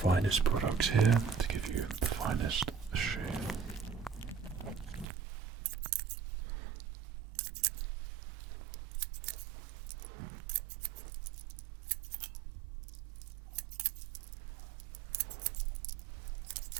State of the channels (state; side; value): drops out; left; at 5.1 s